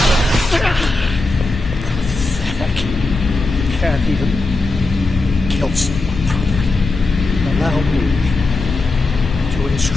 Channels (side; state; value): right; quieter; 3.3 dB